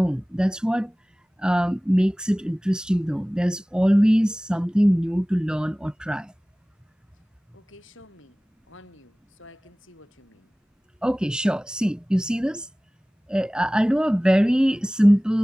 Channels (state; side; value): normal; both; correlation 0.98